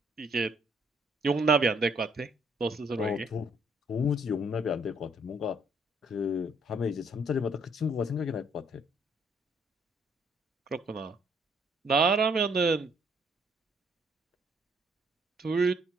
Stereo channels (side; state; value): both; normal; correlation 0.66